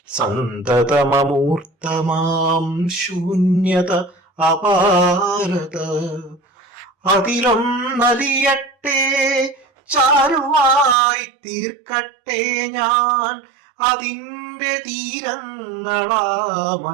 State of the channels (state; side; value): drops out; left; at 11.0 s